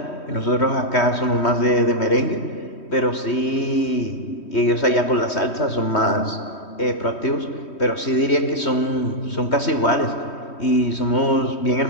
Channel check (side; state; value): right; late; 3.2 ms